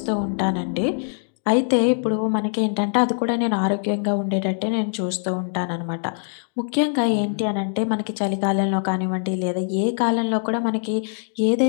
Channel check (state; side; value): silent; right; digital silence